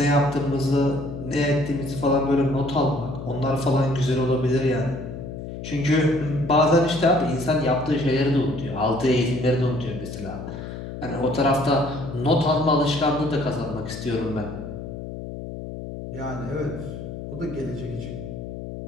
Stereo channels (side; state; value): left; noise; hum, 9 dB below the sound